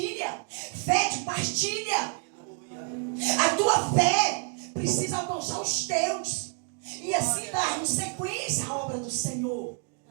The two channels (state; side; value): quieter; left; 38.1 dB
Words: Fé que partilha. A tua fé precisa alcançar os teus. E assim darmos sequência à obra do Senhor.